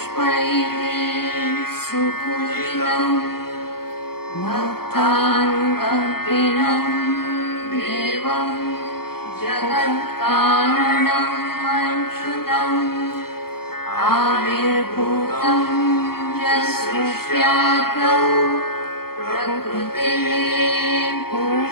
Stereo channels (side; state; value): right; late; 0.94 ms